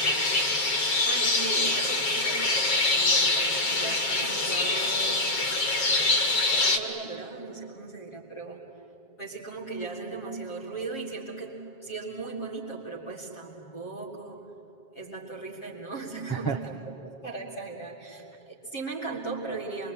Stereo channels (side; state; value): right; late; 7.4 ms